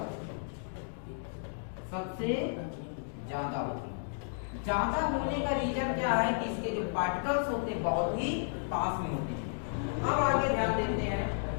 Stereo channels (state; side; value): silent; right; digital silence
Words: है, सबसे ज्यादा होती है। ज्यादा होने का रीजन क्या है कि इसके जो पार्टिकल्स होते हैं बहुत ही पास में होते हैं। अब आगे ध्यान देते हैं,